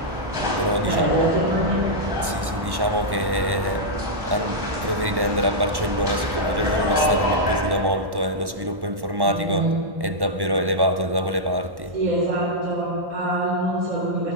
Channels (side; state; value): left; late; 1.1 ms